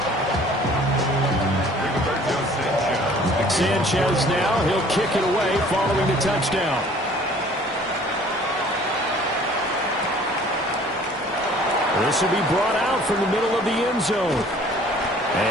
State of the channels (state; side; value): normal; both; correlation 0.53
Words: Sanchez now, he'll kick it away following the touchdown. This will be brought out from the middle of the end zone.